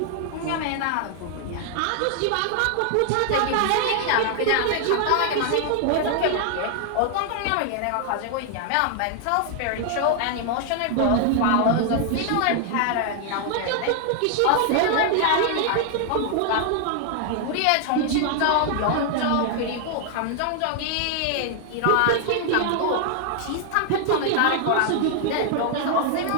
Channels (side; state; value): both; different; correlation 0.00